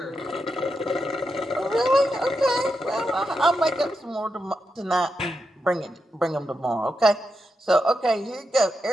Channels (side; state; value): both; normal; correlation 0.86